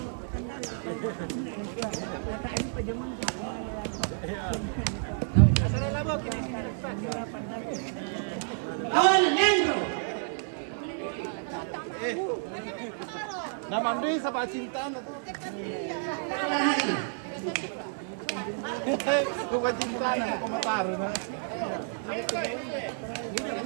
Kawan Nendro. Nama Andri sa cintaan na to. Kung cintaan na, kumataro na.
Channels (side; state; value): left; silent; digital silence